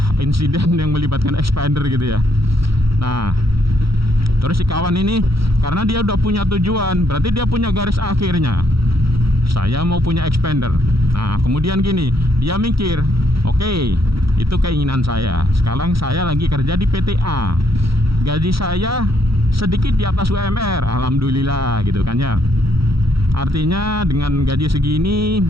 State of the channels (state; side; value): late; left; 0.75 ms